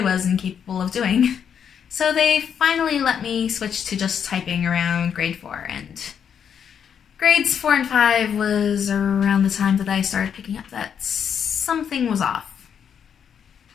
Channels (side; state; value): right; quieter; 7.9 dB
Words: incapable of doing. So they finally let me switch to just typing around grade 4, and grades 4 and 5 was around the time that I started picking up that something was off.